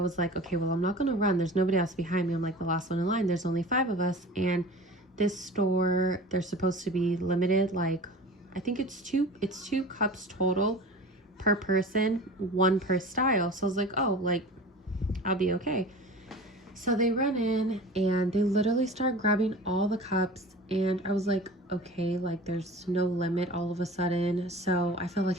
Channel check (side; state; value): both; normal; correlation 0.38